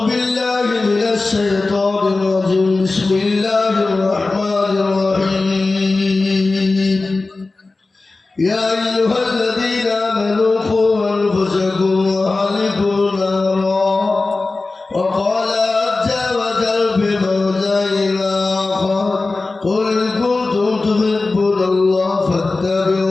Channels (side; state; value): right; quieter; 3.5 dB